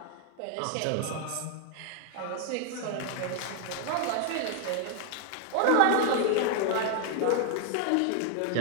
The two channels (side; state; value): both; different; correlation 0.00